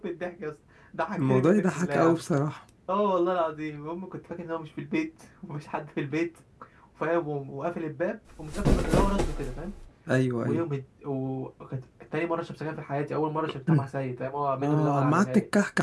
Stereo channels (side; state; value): both; identical; correlation 1.00